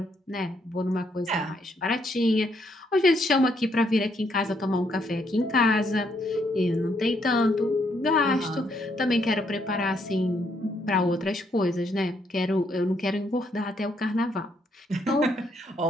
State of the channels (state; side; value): normal; both; correlation 0.73